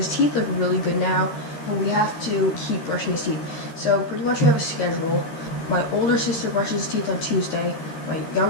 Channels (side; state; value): right; late; 13 ms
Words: teeth look really good now, but we have to keep brushing his teeth. So pretty much we have a schedule. My older sister brushes his teeth on Tuesday. My